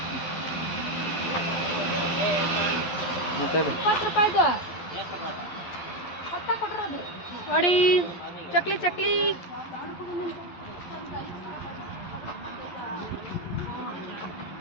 ಮಾತಾಡಿ. 20 ರೂಪಾಯಿದು ನೋಡಿ ಚಕ್ಲಿ ಚಕ್ಲಿ.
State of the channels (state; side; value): late; right; 11 ms